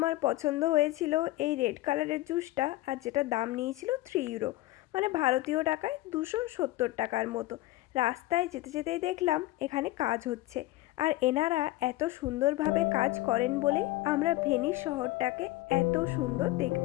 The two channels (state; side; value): quieter; right; 17.7 dB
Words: পছন্দ হয়েছিল এই রেড কালারের জুসটা, আর যেটা দাম নিয়েছিল 3 ইউরো, মানে ভারতীয় টাকায় 270 টাকার মতো। রাস্তায় যেতে যেতেই দেখলাম এখানে কাজ হচ্ছে, আর এনারা এত সুন্দরভাবে কাজ করেন বলে আমরা ভেনিস শহরটাকে এত সুন্দর